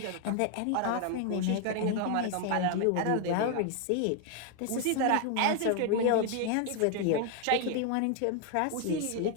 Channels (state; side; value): different; both; correlation 0.00